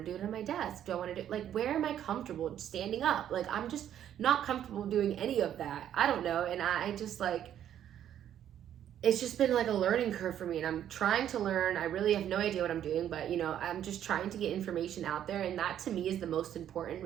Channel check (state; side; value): quieter; left; 10.5 dB